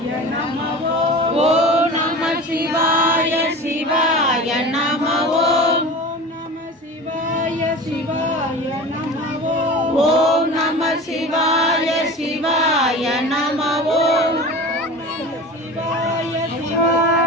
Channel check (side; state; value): both; normal; correlation 0.34